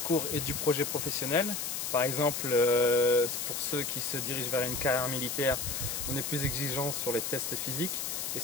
et du projet professionnel. Par exemple, pour ceux qui se dirigent vers une carrière militaire, on est plus exigeant sur les tests physiques et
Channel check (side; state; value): left; noise; hiss, 3 dB below the sound